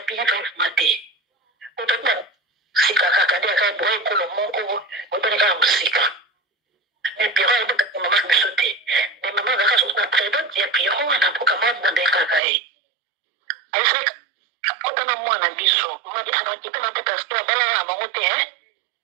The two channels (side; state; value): left; drops out; at 12.4 s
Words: Pierrot mate otata sika kaka de ka boy ko lo moko otani ka musika mais Pierrot aiba pe mama biso te mais mama ka so na prédot ya Pierrot na poka mama de kaka aisa otana mwana biso mama anakipa na peta sta bala na mamote